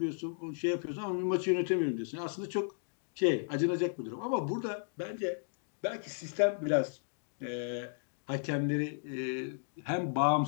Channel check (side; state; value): right; silent; digital silence